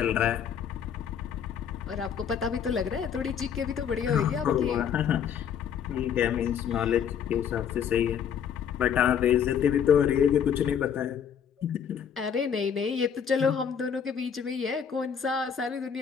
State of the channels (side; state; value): right; quieter; 7.9 dB